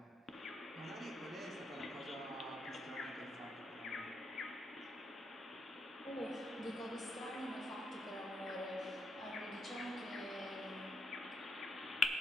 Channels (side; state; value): both; normal; correlation 0.80